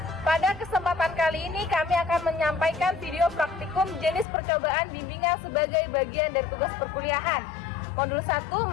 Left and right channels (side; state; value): right; drops out; at 4.2 s